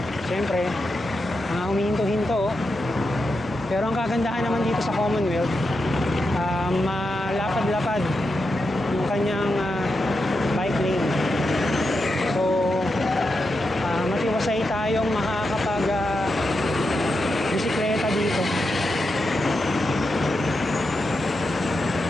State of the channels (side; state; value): both; normal; correlation 0.87